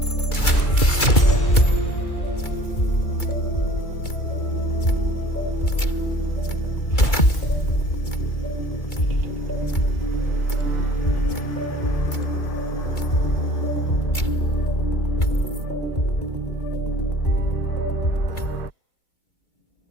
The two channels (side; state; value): right; late; 2.3 ms